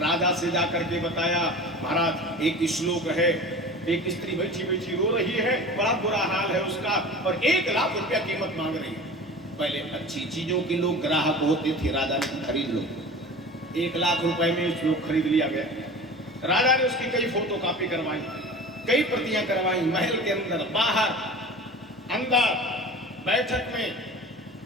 से जाकर के बताया, महाराज एक श्लोक है, एक स्त्री बैठी बैठी रो रही है, बड़ा बुरा हाल है उसका, और 1 लाख रुपया कीमत मांग रही है। पहले अच्छी चीजों के लोग ग्राहक होते थे, राजा ने खरीद लो, 1 लाख रुपए में श्लोक खरीद लिया गया। राजा ने उसकी कई फोटो कॉपी करवाई, कई प्रतियां करवाई, महल के अंदर, बाहर, अंदर, बैठक में,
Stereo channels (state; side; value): normal; both; correlation 0.37